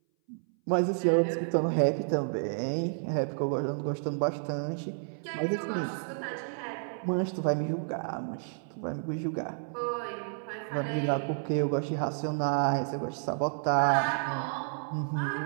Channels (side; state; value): left; silent; 57 dB below the other